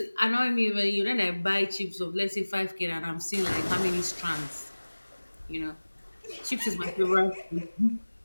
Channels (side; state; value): both; inverted; correlation -1.00